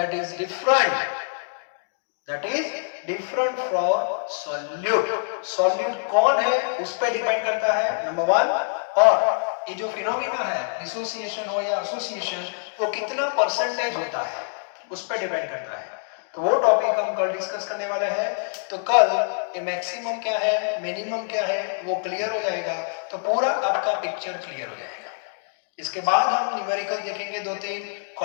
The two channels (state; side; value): silent; right; digital silence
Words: is different. That is different from solute. Solute कौन है उस पर डिपेंड करता है, नंबर 1, और ये जो फिनोमिना है डिसोसिएशन हो या एसोसिएशन वो कितना परसेंटेज होता है उस पर डिपेंड करता है। तो वो टॉपिक हम कल डिस्कस करने वाले हैं। तो कल ये मैक्सिमम क्या है, मिनिमम क्या है वो क्लियर हो जाएगा, तो पूरा आपका पिक्चर क्लियर हो जाएगा। इसके बाद हम न्यूमेरिकल देखेंगे, 2-3